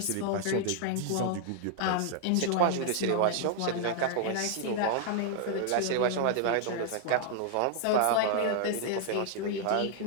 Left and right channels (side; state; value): both; different; correlation 0.00